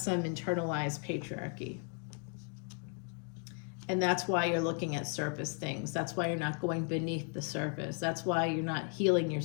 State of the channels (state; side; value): quieter; right; 39.9 dB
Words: internalized patriarchy. And that's why you're looking at surface things. That's why you're not going beneath the surface. That's why you're not healing